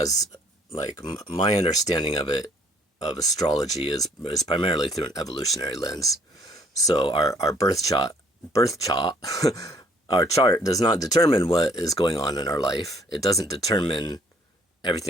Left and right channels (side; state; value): both; normal; correlation 0.61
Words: like, my understanding of astrology is primarily through an evolutionary lens. So our birth chart our chart does not determine what is going on in our life. It doesn't determine